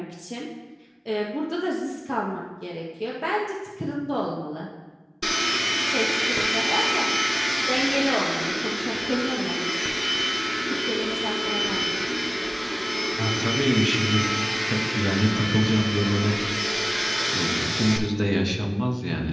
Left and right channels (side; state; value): both; identical; correlation 1.00